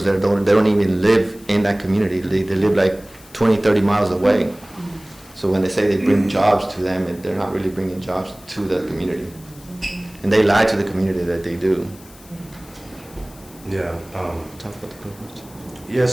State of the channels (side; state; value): left; noise; hiss, 23 dB below the sound